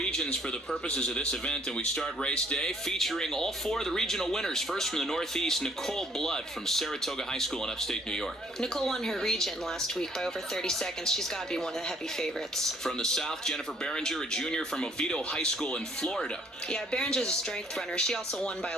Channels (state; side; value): normal; both; correlation 0.63